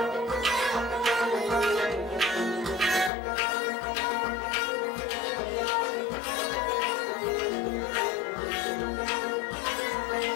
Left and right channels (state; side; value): drops out; right; at 3.1 s